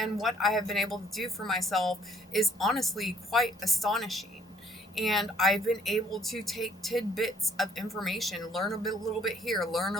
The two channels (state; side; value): normal; both; correlation 0.62